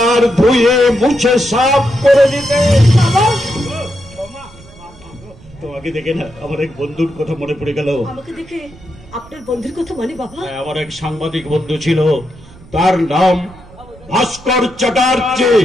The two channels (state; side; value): noise; right; rumble, 22 dB below the sound